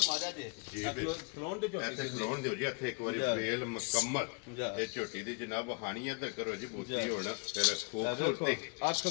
ਮਾਰਿਆ ਜੇ ਜੀ ਖਲੋਨ ਦੇ ਝੋਟੀ ऐसे खलोन दियो जी ਇੱਥੇ ਇੱਕ ਵਾਰੀ वेल मुकम्मल ਇਹ ਝੋਟੀ ਦੀ ਜਨਾਬ ਹਾਨੀਆਂ ਤੇ ਕਰੋ ਜੀ ਬੂਤੀ ਹੋਣਾ ਫਿਰ ਖੂਬਸੂਰਤੀ ਅੱਖ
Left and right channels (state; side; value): quieter; right; 33.3 dB